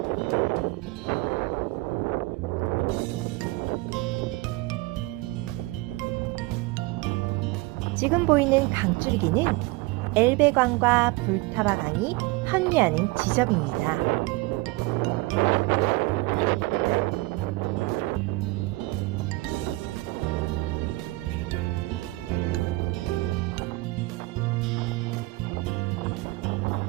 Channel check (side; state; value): left; quieter; 22.3 dB